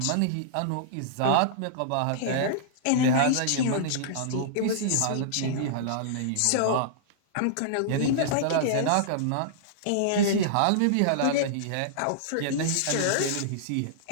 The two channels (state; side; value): different; both; correlation -0.02